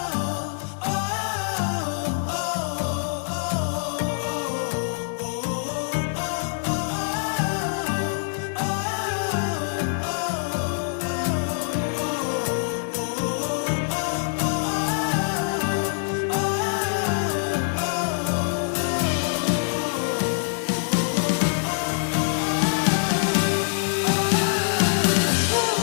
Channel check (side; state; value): right; silent; 62 dB below the other